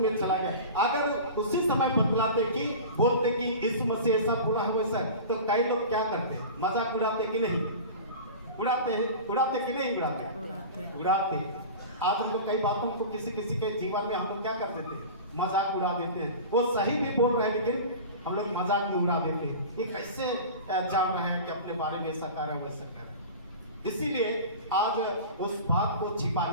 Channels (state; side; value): inverted; both; correlation -0.34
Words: चला गया। अगर उसी समय बतलाते कि बोलते कि यीशु मसीह ऐसा बोला है वैसा, तो कई लोग क्या करते, मजाक उड़ाते कि नहीं उड़ाते कि नहीं उड़ाते। आज हम लोग कई बातों को किसी के जीवन में हम लोग क्या कर देते हैं, मजाक उड़ा देते हैं। वो सही भी बोल रहे हैं लेकिन हम लोग मजाक में उड़ा देते हैं। ये कैसे जान रहे हैं कि अपने बारे में ऐसा कर रहे हैं वैसा कर रहे हैं। इसीलिए आज उस बात को